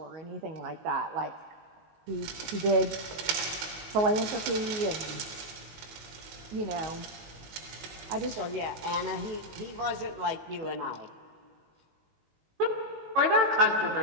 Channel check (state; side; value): late; left; 19 ms